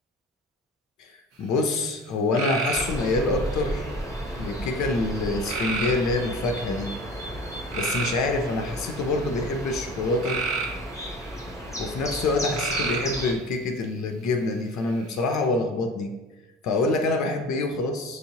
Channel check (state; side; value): normal; both; correlation 0.38